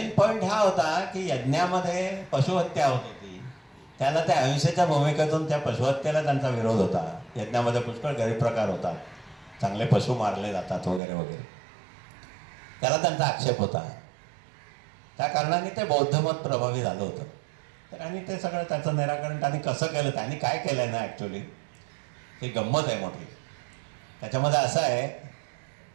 पॉईंट हा होता की यज्ञामध्ये पशुहत्या होत होती, त्याला त्या अहिंसेच्या भूमिकेतून त्या पशुहत्येला त्यांचा विरोध होता. यज्ञामध्ये पुष्कळ गैरप्रकार होतात, चांगले पशु मारले जातात वगैरे वगैरे, त्याला त्यांचा आक्षेप होता. त्या कारणाने ते बौद्ध मत प्रभावी झालं होतं. तर आणि ते सगळं त्याचं निराकरण त्यांनी कसं केलं, त्यांनी काय केलं आहे ना, ॲक्च्युली ही गंमत आहे मोठी. त्याच्यामध्ये असं आहे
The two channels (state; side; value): drops out; left; at 11.0 s